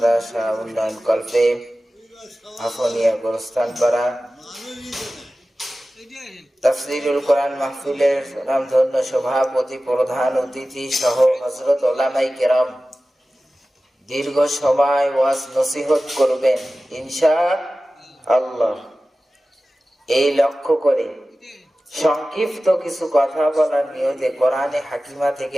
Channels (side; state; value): both; normal; correlation 0.96